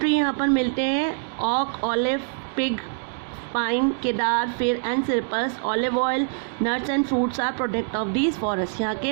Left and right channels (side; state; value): left; silent; digital silence